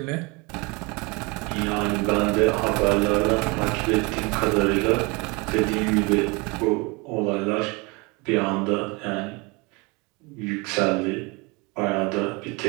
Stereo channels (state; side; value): quieter; left; 27.8 dB